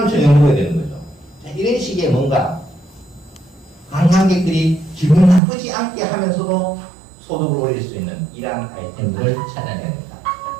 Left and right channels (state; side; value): drops out; left; at 5.4 s